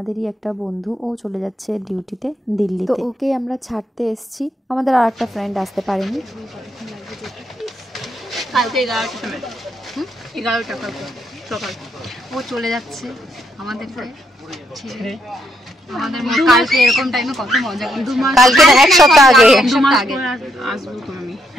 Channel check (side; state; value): both; normal; correlation 0.76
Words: একটা বন্ধু ও চলে যাচ্ছে ডিউটিতে দিল্লিতে, তো ওকে আমরা ছাড়তে এসেছি। আমাদের আর একটা ফ্রেন্ড আসতে পারেনি। কালকে 11টার সময় 11টা সকাল ও চলে যাচ্ছে আমাদের ছেড়ে। আমাদের কালকে এরকম টাইমে কত মজা করছি। কালকে না, এক সপ্তাহ আগে আসবো তো আমি।